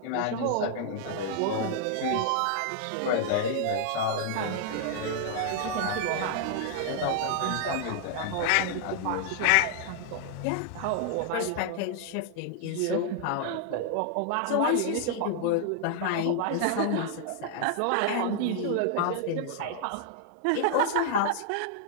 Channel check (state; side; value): different; both; correlation -0.01